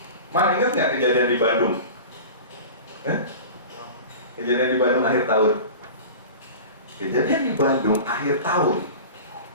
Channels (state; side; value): inverted; both; correlation -0.35